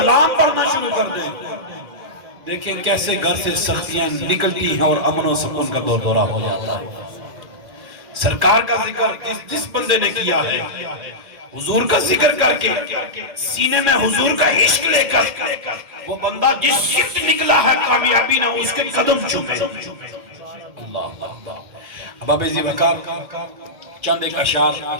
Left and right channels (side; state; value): left; late; 2.4 ms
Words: پڑھنا شروع کر دیں. دیکھیں کیسے گھر سے سختیاں نکلتی ہیں اور امن و سکون کا دور دورہ ہو جاتا ہے. سرکار کا ذکر جس بندے نے کیا ہے، حضور کا ذکر کر کے سینے میں حضور کا عشق لے کر، وہ بندہ جس شفت نکلا ہے کامیابی نہ اس کے قدم چومے. اللہ اللہ. احباب ذی وقار، چند ایک اشعار